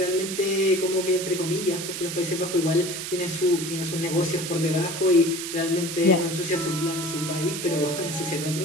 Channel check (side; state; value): right; noise; hiss, 6 dB below the sound